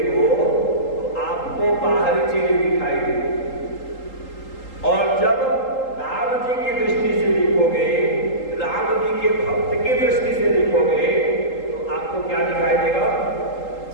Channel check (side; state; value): right; late; 3.8 ms